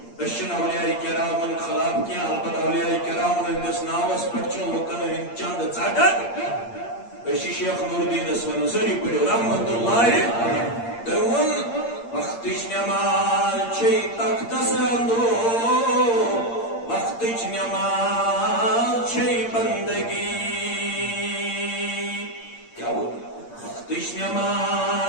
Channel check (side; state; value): right; late; 8.7 ms